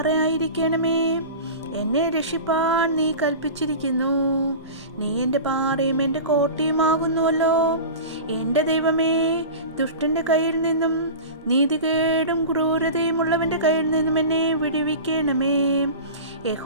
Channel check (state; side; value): inverted; both; correlation -0.32